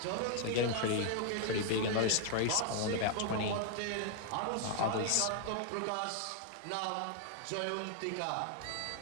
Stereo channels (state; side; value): different; both; correlation 0.00